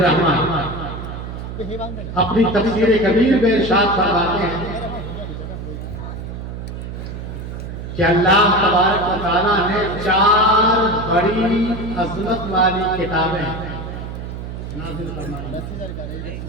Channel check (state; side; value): noise; right; hum, 8 dB below the sound